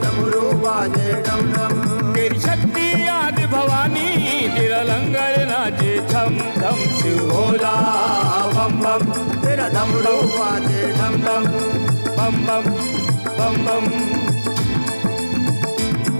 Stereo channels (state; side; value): inverted; both; correlation -1.00